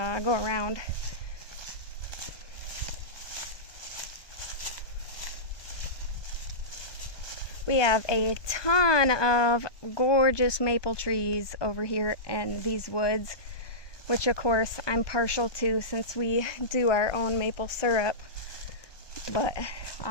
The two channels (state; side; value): late; right; 1.2 ms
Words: go around. We have a ton of gorgeous maple trees over here in these woods, which of course I'm partial to since we do our own maple syrup. But